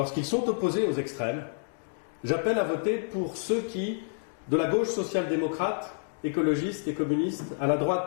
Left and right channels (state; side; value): silent; right; digital silence